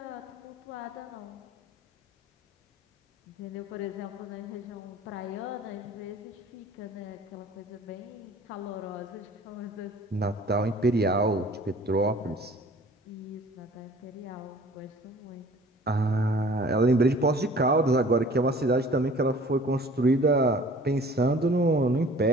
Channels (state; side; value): normal; both; correlation 0.49